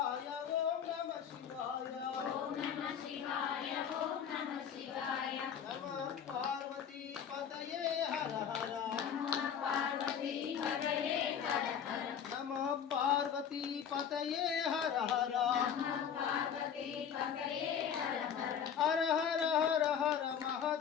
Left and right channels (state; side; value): quieter; right; 8.1 dB